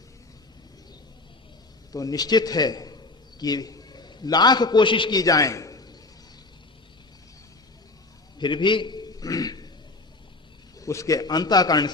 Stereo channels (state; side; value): quieter; right; 3.2 dB